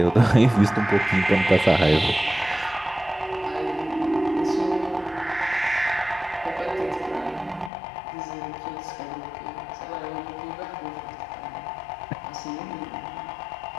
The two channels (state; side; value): drops out; right; at 7.7 s